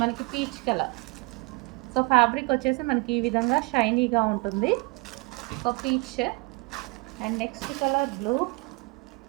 మనకి పీచ్ కలర్. సో ఫ్యాబ్రిక్ వచ్చేసి మనకి ఈ విధంగా షైనీగా ఉంటుంది. So peach. And next colour blue.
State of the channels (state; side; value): quieter; left; 28.4 dB